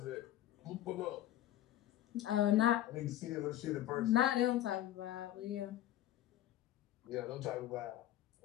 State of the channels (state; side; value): quieter; right; 13.2 dB